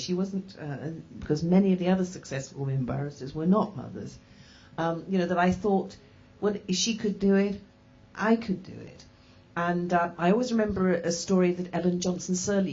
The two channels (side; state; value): both; identical; correlation 1.00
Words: wasn't, because many of the other successful women barristers were not mothers. That I thought, well, if she could do it, I could do it. And I always remember a story that Ellen Johnson